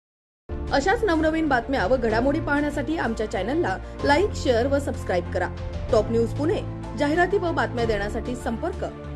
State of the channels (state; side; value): identical; both; correlation 1.00